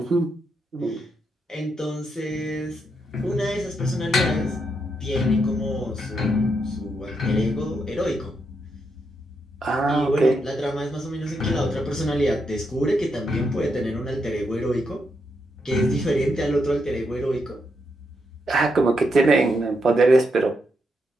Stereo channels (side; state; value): both; normal; correlation 0.81